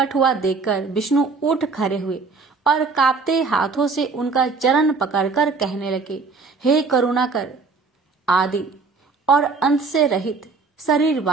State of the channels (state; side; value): quieter; left; 4.4 dB